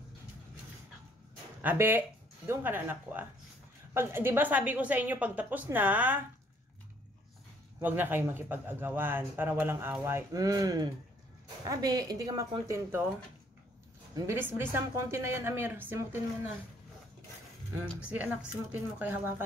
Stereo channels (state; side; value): normal; both; correlation 0.63